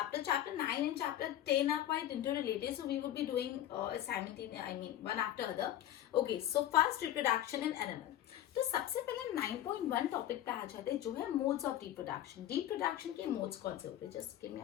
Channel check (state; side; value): quieter; right; 12.3 dB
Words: Chapter 9 and chapter 10 are quite interrelated. So we would be doing one after other. Okay, so first reproduction in animal. तो सबसे पहले 9.1 टॉपिक पे आ जाते हैं जो है मोड्स ऑफ रिप्रोडक्शन. रिप्रोडक्शन के मोड्स कौन से होते हैं? Just give me a